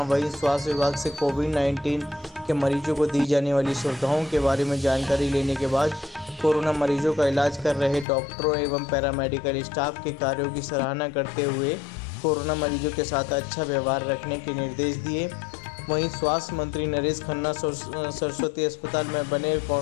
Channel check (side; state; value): right; drops out; at 8.1 s